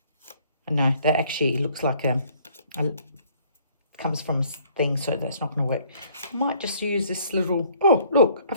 no, that actually looks like comes from a thing, so that's not going to work. I might just use this little, oh, look,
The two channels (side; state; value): both; inverted; correlation -0.60